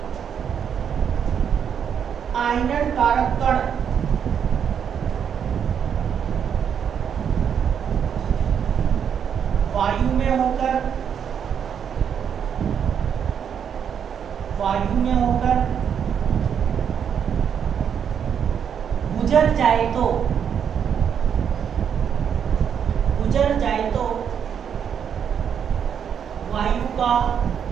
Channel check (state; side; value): quieter; left; 7.9 dB